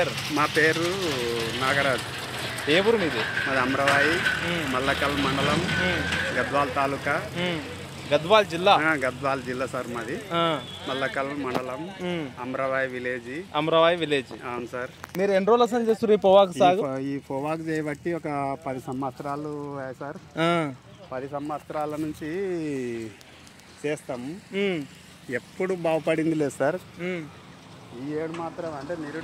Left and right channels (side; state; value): both; identical; correlation 1.00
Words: మా పేరు నాగరాజు. ఏ ఊరు మీది? మాది అమరవాయి, మల్లకల్ మండలం, గద్వాల్ తాలూకా, గద్వాల్ జిల్లా. గద్వాల్ జిల్లా సార్ మాది. మల్లకల్ మండలం, అమరవాయి విలేజ్. అమరవాయి విలేజ్. అవును సార్. మీరు ఎన్ని రోజులు అసలు చేస్తారు ఈ పొగాకు సాగు? ఈ పొగాకు చేయబట్టి ఒక 10 సంవత్సరాలు సార్. 10 సంవత్సరాల నుంచి చేస్తాము. ఎప్పుడు బాగుపడింది లేదు సార్. ఈ ఏడు మాత్రం అంటే